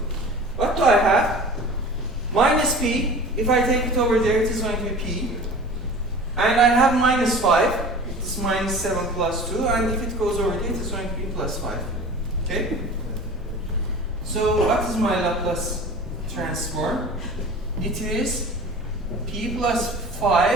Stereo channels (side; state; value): both; normal; correlation 0.40